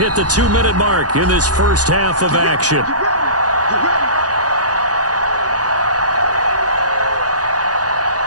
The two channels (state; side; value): late; left; 0.68 ms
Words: the 2-minute mark in this first half of action.